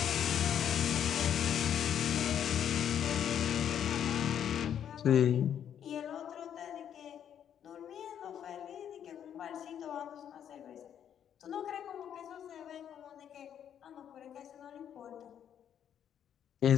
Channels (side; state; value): right; quieter; 9.3 dB